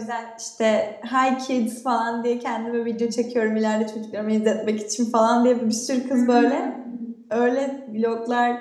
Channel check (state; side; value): identical; both; correlation 1.00